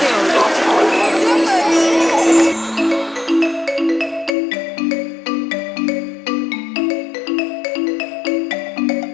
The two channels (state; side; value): drops out; right; at 4.4 s